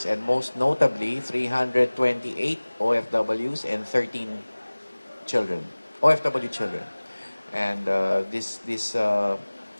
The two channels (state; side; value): inverted; both; correlation -1.00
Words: and most notably 328 OFWs and 13 children, OFW children. And this